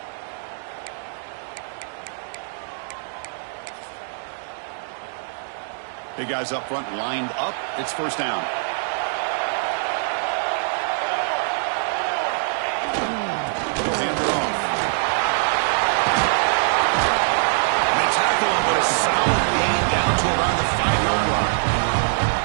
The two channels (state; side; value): silent; left; digital silence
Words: Big guys up front lined up. It's first down.